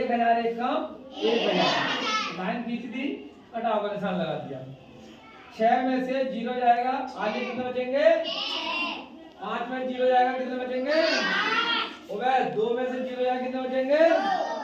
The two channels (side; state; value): both; identical; correlation 1.00